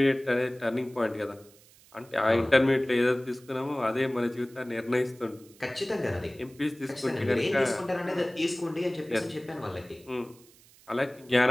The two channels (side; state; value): right; noise; hiss, 26 dB below the sound